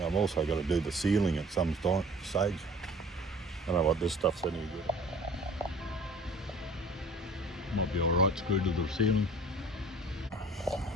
also got to do the ceiling at some stage. I don't know what this stuff's any good. Might be alright screwed to the ceiling.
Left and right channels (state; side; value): normal; both; correlation 0.48